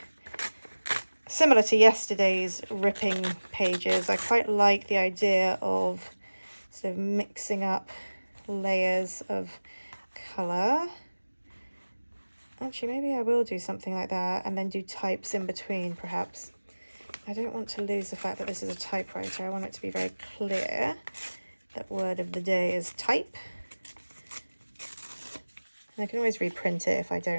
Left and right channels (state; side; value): inverted; both; correlation -1.00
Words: similar to yesterday's ripping pages, I quite like the idea of sort of mixing up layers of colour. actually, maybe I will do something like that and then do types in between, perhaps. I don't want to lose the fact that this is a typewriter. I want it to be very clear that word of the day is type. And I can always reprint it if I